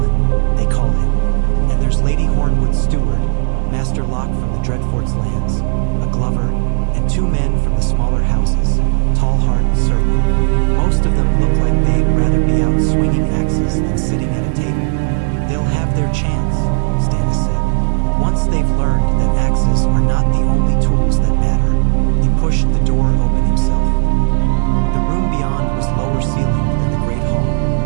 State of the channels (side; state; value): left; silent; digital silence